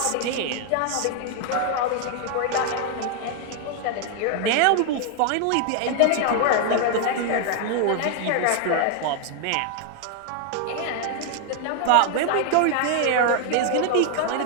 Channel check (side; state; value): both; different; correlation 0.00